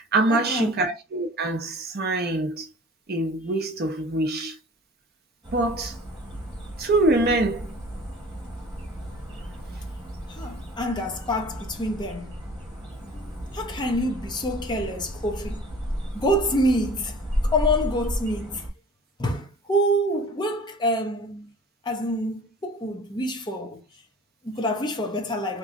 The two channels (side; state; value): both; normal; correlation 0.45